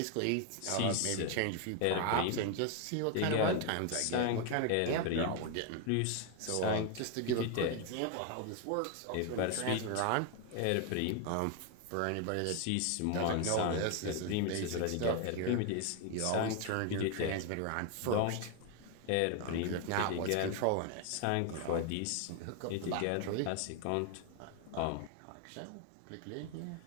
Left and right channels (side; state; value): both; different; correlation 0.01